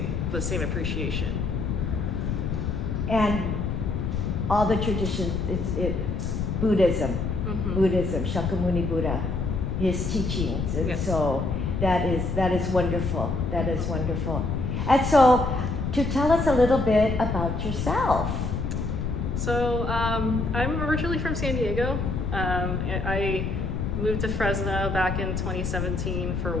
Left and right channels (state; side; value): noise; left; rumble, 1 dB below the sound